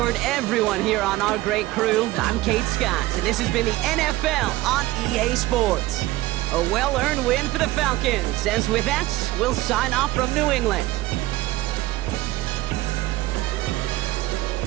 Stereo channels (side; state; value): left; quieter; 17.5 dB